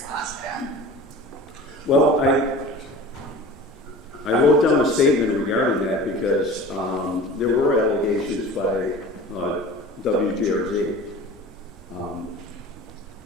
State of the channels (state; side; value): normal; both; correlation 0.39